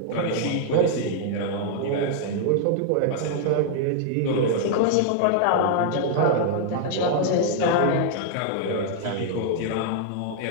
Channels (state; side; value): different; both; correlation -0.01